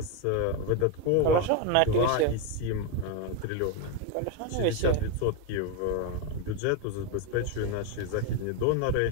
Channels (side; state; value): both; different; correlation 0.02